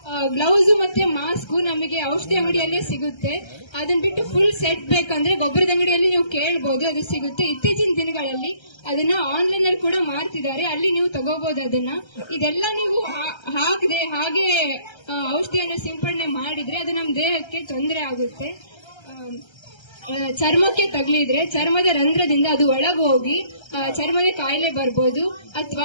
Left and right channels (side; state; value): right; late; 1.3 ms